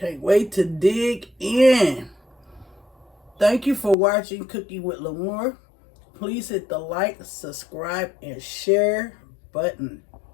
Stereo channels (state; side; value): drops out; right; at 4.0 s